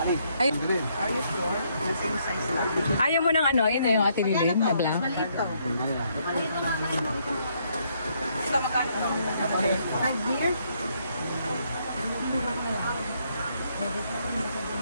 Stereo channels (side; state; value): both; inverted; correlation -0.72